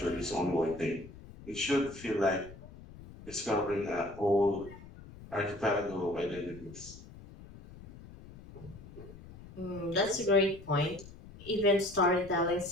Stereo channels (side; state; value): left; noise; rumble, 17 dB below the sound